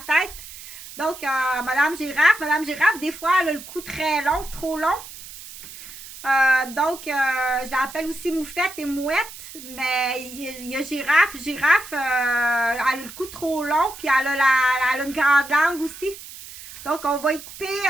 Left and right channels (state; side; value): noise; right; hiss, 15 dB below the sound